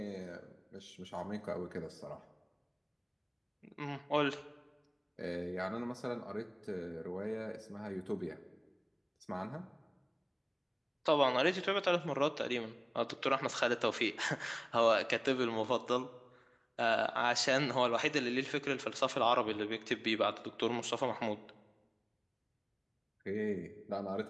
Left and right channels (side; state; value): both; identical; correlation 1.00